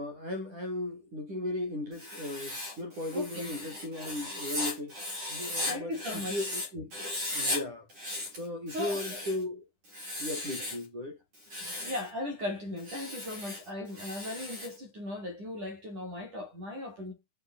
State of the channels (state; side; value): late; left; 10 ms